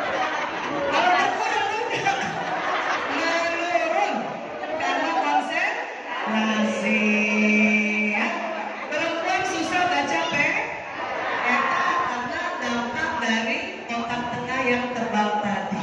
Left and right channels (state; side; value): identical; both; correlation 1.00